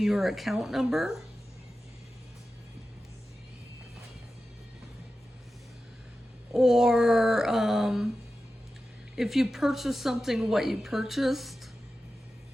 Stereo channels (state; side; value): normal; both; correlation 0.93